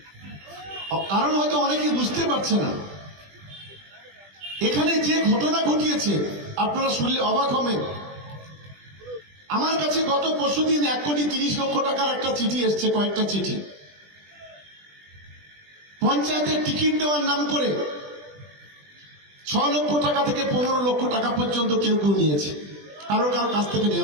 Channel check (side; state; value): left; late; 20 ms